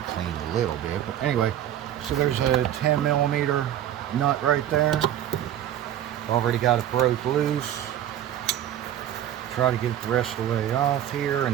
clean a little bit. But anyway, so there's a 10mm nut right there. Already got it broke loose. Try to get it the rest of the way off here, and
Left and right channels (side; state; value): left; quieter; 11.3 dB